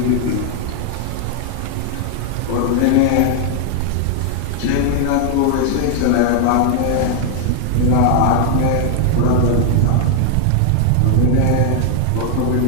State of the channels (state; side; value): different; both; correlation 0.00